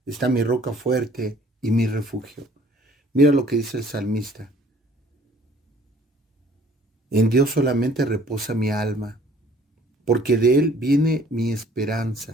está mi roca fuerte y mi refugio. Mira lo que dice el salmista. En Dios solamente reposa mi alma, porque de Él viene mi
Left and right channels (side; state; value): both; normal; correlation 0.56